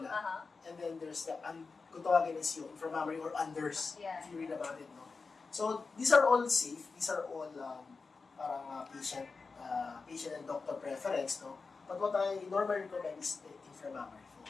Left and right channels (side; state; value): right; quieter; 4.4 dB